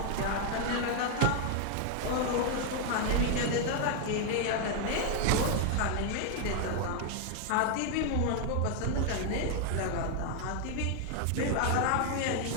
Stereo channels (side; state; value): both; different; correlation 0.00